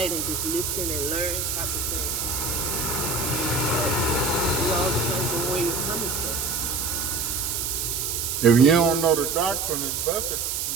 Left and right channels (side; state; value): right; noise; hiss, 1 dB below the sound